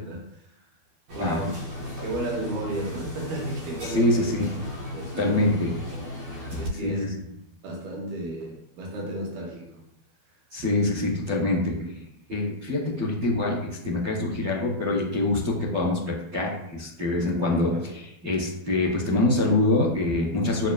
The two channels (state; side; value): late; left; 12 ms